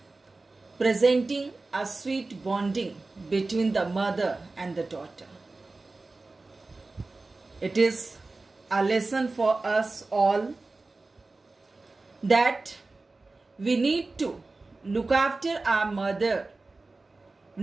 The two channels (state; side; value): quieter; left; 3.4 dB